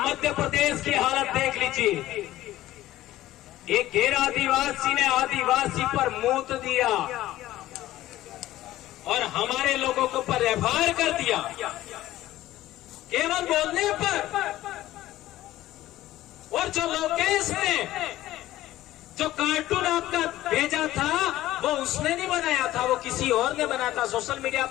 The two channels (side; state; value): right; quieter; 15.2 dB